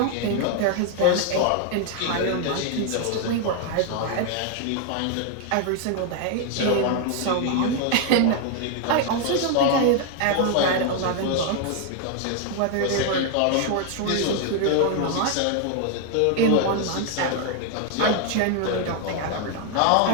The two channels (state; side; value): different; both; correlation 0.00